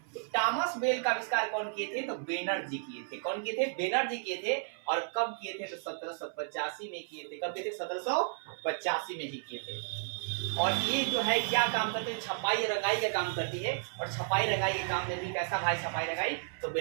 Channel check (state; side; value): silent; left; 56 dB below the other